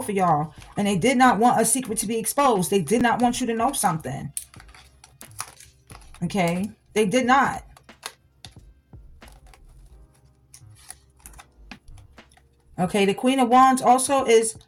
of y'all, and they did not want a secret to be exposed. They did not want you to know something. Okay, they did not. Okay, the Queen of Wands also is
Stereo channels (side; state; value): both; identical; correlation 1.00